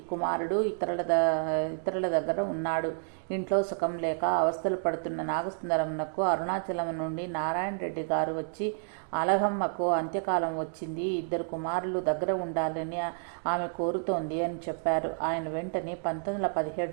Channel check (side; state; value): left; silent; digital silence